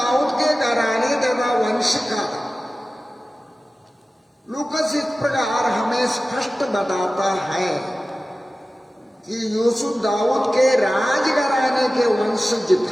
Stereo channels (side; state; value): both; normal; correlation 0.96